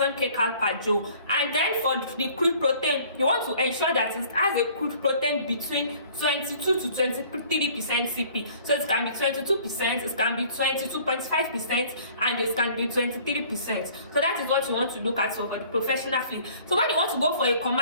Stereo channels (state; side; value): inverted; both; correlation -0.53